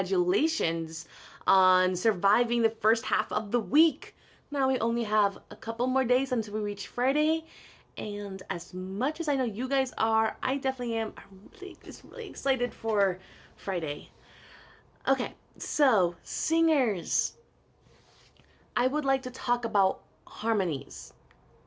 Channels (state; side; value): identical; both; correlation 1.00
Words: on surviving the first half of the week. Now we only have a couple more days until we reach Friday. And as much as I know you guys are, I definitely am. I'm really excited for Friday. Okay, so singers. I would like to talk about harmonies,